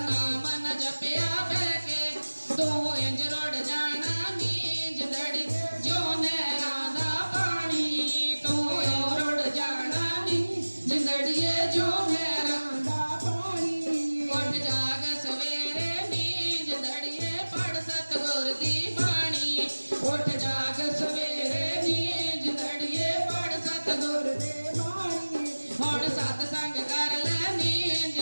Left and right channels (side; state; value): both; inverted; correlation -1.00